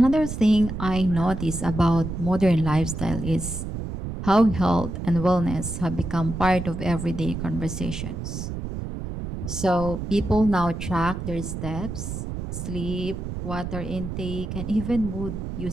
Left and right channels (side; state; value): right; noise; rumble, 6 dB below the sound